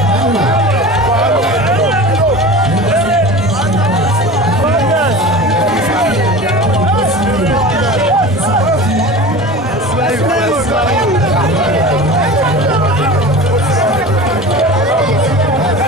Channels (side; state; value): both; normal; correlation 0.34